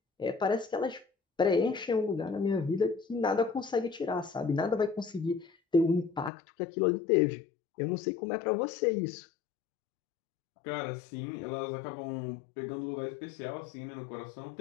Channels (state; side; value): drops out; right; at 6.3 s